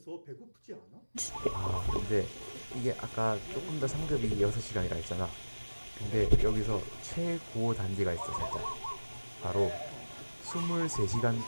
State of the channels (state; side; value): inverted; both; correlation -1.00